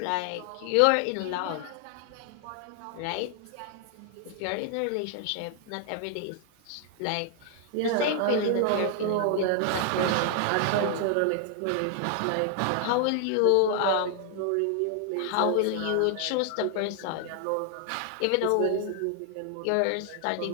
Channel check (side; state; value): both; different; correlation 0.00